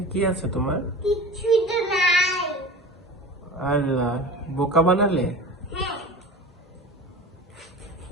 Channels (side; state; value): both; normal; correlation 0.34